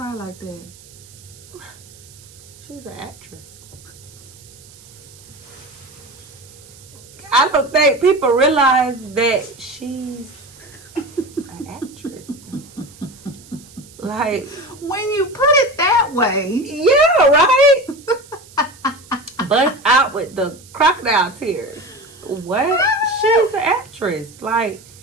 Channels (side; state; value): right; noise; hiss, 22 dB below the sound